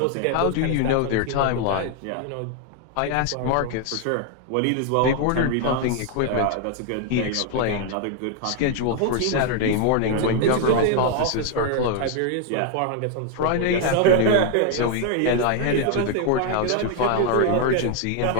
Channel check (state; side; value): different; both; correlation 0.00